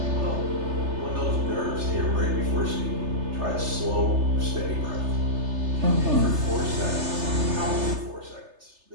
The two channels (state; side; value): late; left; 3.3 ms